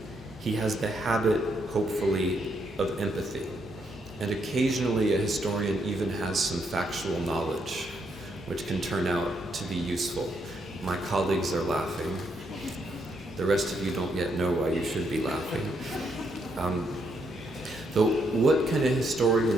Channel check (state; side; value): normal; both; correlation 0.76